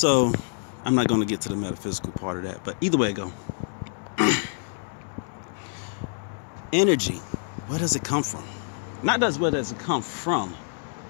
I'm not going to get to the metaphysical part of that, but either way it go. Energy, where does it come from? Not just where does it come from.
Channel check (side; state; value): right; silent; digital silence